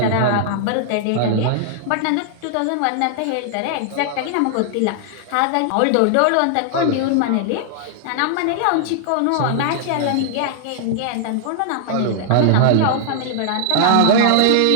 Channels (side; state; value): both; different; correlation -0.01